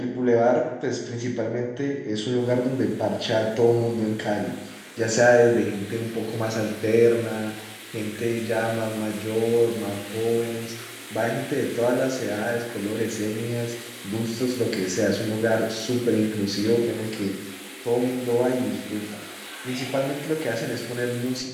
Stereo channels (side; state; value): both; identical; correlation 1.00